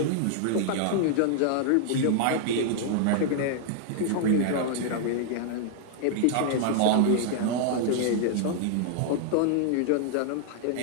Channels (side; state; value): both; different; correlation -0.01